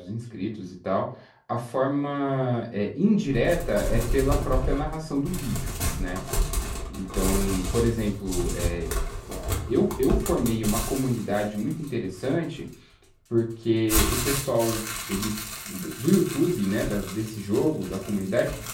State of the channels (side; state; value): both; identical; correlation 1.00